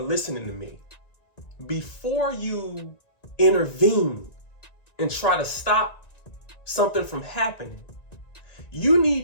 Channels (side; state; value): right; late; 1.9 ms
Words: to me, before you intervene and try to stop something from happening, you